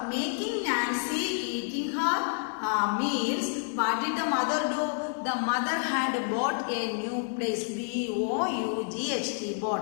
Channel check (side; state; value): right; silent; 59 dB below the other